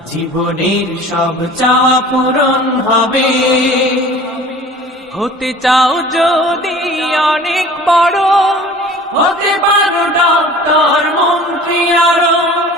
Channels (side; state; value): both; normal; correlation 0.45